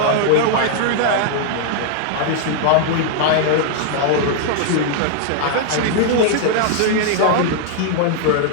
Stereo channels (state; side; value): different; both; correlation -0.01